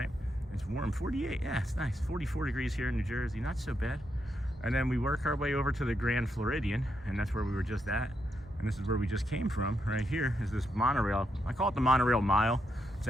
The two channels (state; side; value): normal; both; correlation 0.81